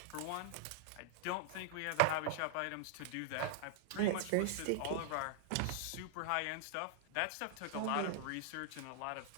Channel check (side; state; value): both; different; correlation 0.00